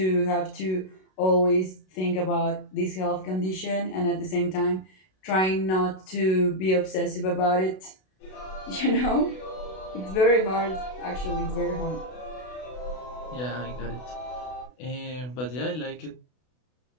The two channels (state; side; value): late; right; 32 ms